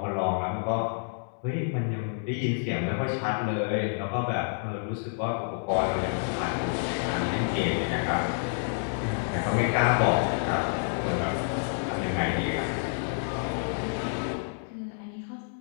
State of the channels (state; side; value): silent; right; digital silence